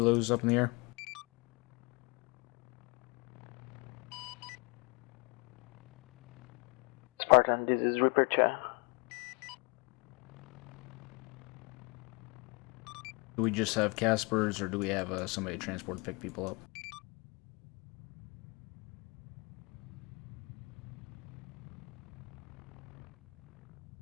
up in the air? Spartan, this is Reaper Cha. Do we just have Caspers, or do we have somebody transport to pick people up?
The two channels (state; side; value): quieter; right; 29.8 dB